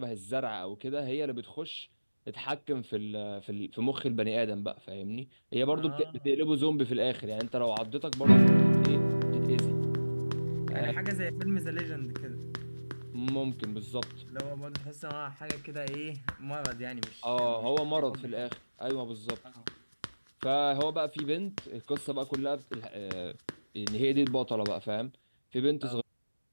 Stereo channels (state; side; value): inverted; both; correlation -1.00